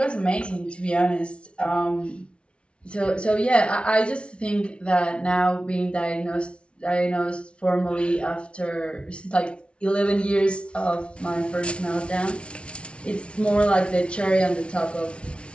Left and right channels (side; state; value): right; late; 0.059 ms